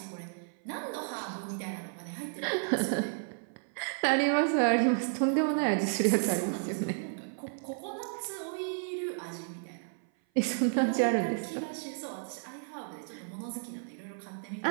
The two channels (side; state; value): left; silent; 56 dB below the other